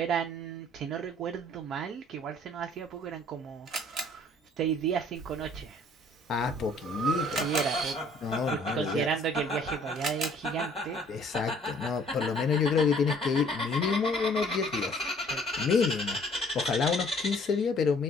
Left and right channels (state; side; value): normal; both; correlation 0.57